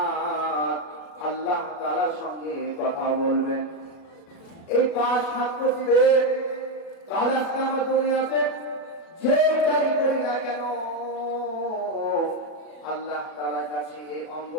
আল্লাহ তাআলার সঙ্গে কথা বলবেন। এই পাঁচ হাত দিবে। তাহলে আজকে আমরা দুনিয়াতে যেটাই করি না কেন, আল্লাহ তাআলার কাছে এই অঙ্গ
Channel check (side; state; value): right; late; 37 ms